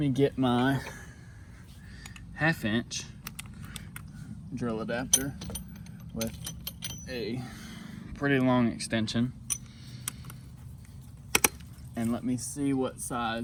get my 1/2 inch drill adapter with a pretty long extension, and let me see what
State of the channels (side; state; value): both; identical; correlation 1.00